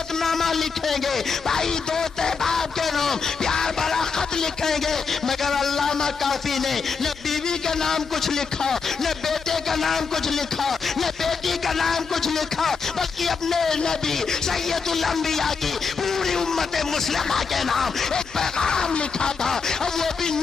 نامہ لکھیں گے، بھائی دوست احباب کے نام پیار بڑا خط لکھیں گے، مگر علامہ کافی نے نہ بیوی کا نام کچھ لکھا، نہ بیٹے کا نام کچھ لکھا، نہ بیٹی کا نام کچھ لکھا، بلکہ اپنے نبی سید الانبیاء کی پوری امت مسلمہ کے نام ایک پیغام لکھا تھا، اور وہ بھی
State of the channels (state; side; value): quieter; right; 5.2 dB